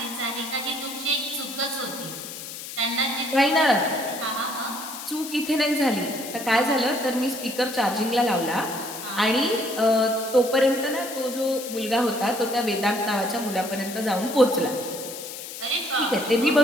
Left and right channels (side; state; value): left; noise; hiss, 10 dB below the sound